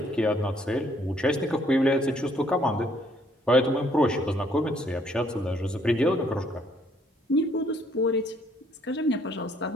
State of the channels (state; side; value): normal; both; correlation 0.66